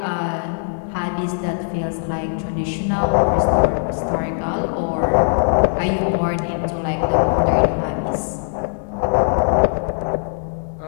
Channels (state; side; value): silent; right; 66 dB below the other